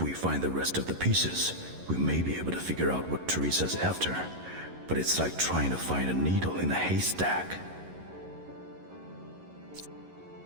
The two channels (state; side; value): late; left; 11 ms